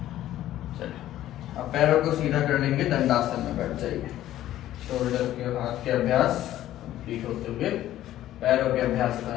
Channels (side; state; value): right; quieter; 13.4 dB